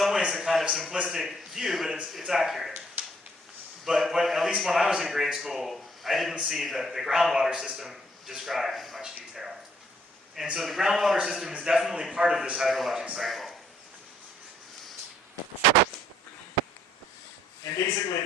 ways, a kind of simplistic view, but it's accurate. But at least when I was in grade school, I didn't see the groundwater system described in much detail. And so the groundwater system is definitely part of this hydrologic cycle. And basically,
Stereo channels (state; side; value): normal; both; correlation 0.67